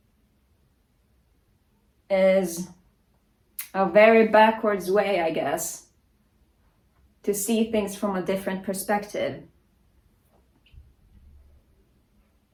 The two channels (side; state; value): both; identical; correlation 1.00